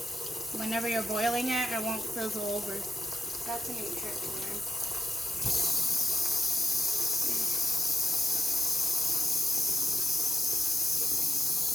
whenever you're boiling it, it won't fizzle over. That's a neat trick to learn.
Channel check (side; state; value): both; normal; correlation 0.90